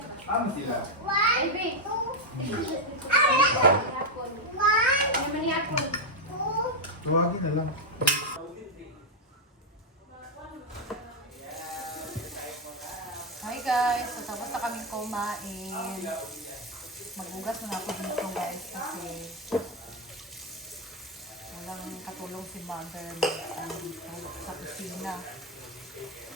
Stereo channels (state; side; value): normal; both; correlation 0.02